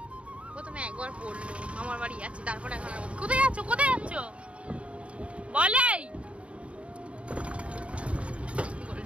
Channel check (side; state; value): left; late; 0.062 ms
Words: প্রথমে একবার বললো আমার বাড়ি যাচ্ছি, তারপরে এখন কোথায় যাচ্ছ? কোথায় যাচ্ছ বলেই